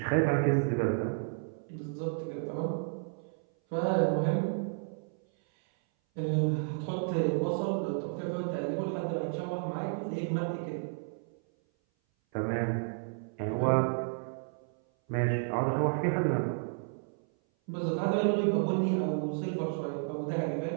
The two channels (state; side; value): silent; left; 57 dB below the other